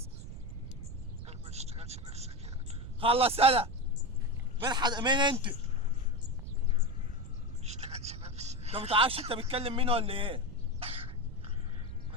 ما تشتغلش نفسك يعني. خلص انا. مين انت؟ ما تشتغلش نفسك. انت متعرفش انت بتكلم مين ولا ايه؟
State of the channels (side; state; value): right; noise; rumble, 9 dB below the sound